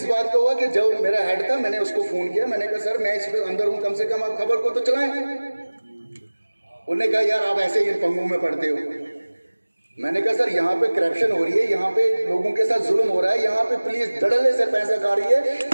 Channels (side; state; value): both; inverted; correlation -1.00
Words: बात का हुआ कि जब मेरा हेड था मैंने उसको फोन किया, मैंने कहा सर मैं इस पर अंदर हूँ, कम से कम आप खबर को तो चलाएं। उन्होंने कहा यार आप ऐसे ही इन पंगों में पड़ते हो। मैंने कहा सर यहाँ पे करप्शन हो रही है, यहाँ पे लोगों के साथ जुल्म हो रहा है, यहाँ पे पुलिस धड़ल्ले से पैसा खा रही है।